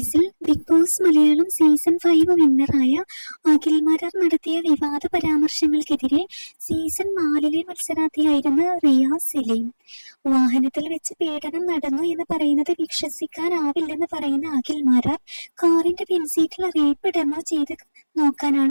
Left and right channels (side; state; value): both; inverted; correlation -1.00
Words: ബിഗ് ബോസ് മലയാളം സീസൺ 5 വിന്നറായ അഖിൽ മാരാർ നടത്തിയ വിവാദ പരാമർശങ്ങൾക്കെതിരെ സീസൺ 4 മത്സരാർത്ഥിയായിരുന്ന റിയാസ് സലീം. വാഹനത്തിൽ വെച്ച് പീഡനം നടന്നു എന്ന് പറയുന്നത് വിശ്വസിക്കാനാവില്ലെന്ന് പറയുന്ന അഖിൽ മാരാർ കാറിന്റെ പിൻസീറ്റിൽ റേപ്പ് ഡെമോ ചെയ്ത്